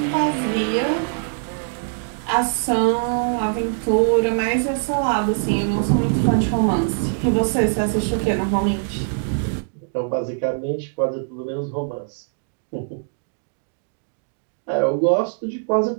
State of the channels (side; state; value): left; silent; digital silence